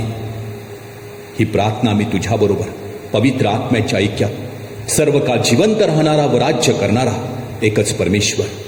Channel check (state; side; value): identical; both; correlation 1.00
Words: ही प्रार्थना मी तुझ्याबरोबर पवित्र आत्म्याच्या ऐक्यात सर्व काळ जिवंत राहणारा व राज्य करणारा एकच परमेश्वर,